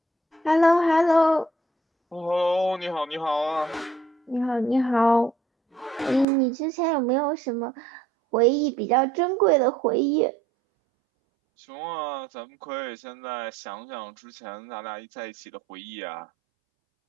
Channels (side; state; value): left; drops out; at 6.2 s